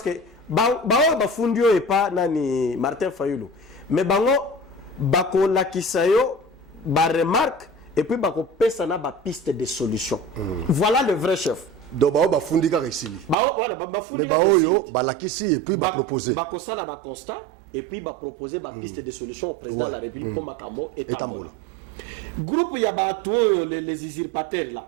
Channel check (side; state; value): left; drops out; at 13.4 s